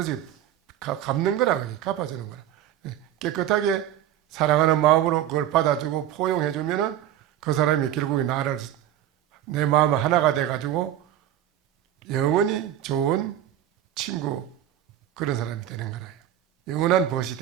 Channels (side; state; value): left; quieter; 11.6 dB